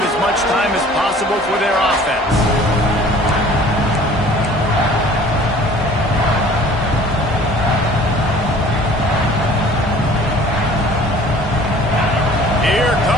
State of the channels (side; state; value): both; normal; correlation 0.49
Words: much time as possible for their offense. Here